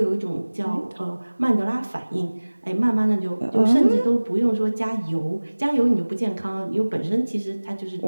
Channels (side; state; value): both; inverted; correlation -1.00